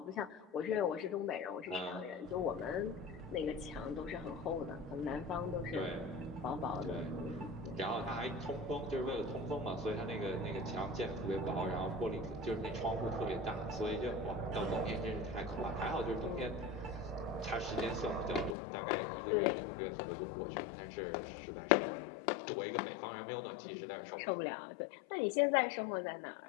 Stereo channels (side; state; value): right; drops out; at 18.6 s